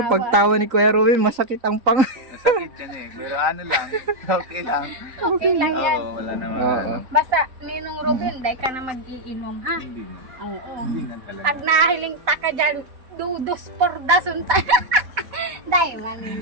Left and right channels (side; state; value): left; late; 3.9 ms